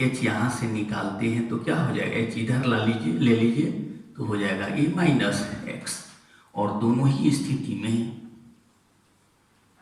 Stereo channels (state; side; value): identical; both; correlation 1.00